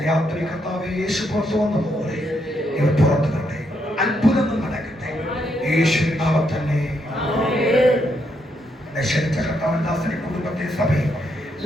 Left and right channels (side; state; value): both; normal; correlation 0.77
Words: രാത്രി കർത്താവേ, യേശു പുറത്തു വന്നതുപോലെ ഇവർ പുറത്തു കട്ടെ. അത്ഭുതങ്ങൾ നടക്കട്ടെ. യേശുവിൻ നാമത്തിൽ തന്നെ. ക്ഷണിച്ച കർത്താവൻ ദാസനെ കുടുംബത്തെ സഭയും